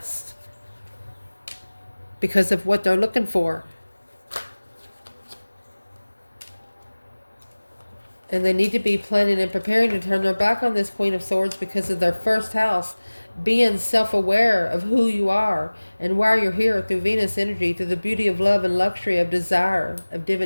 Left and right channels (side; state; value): both; inverted; correlation -1.00